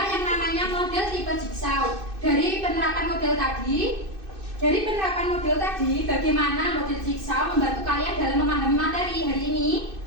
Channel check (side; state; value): left; late; 2.6 ms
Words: yang namanya model tipe jigsaw. Dari penerapan model tadi, bagaimana model jigsaw membantu kalian dalam memahami materi hari ini?